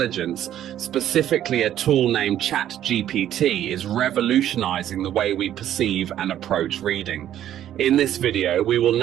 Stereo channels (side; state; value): left; quieter; 11.4 dB